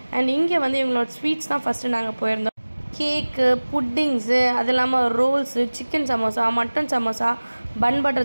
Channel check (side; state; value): both; inverted; correlation -1.00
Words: அண்ட் இங்கே வந்து இவங்களோட ஸ்வீட்ஸ் தான் ஃபஸ்ட்டு நாங்கள் போயிருந்தோம். கேக்கு, புட்டிங்ஸு, அது இல்லாமல் rolls, chicken samosa, mutton samosa, bun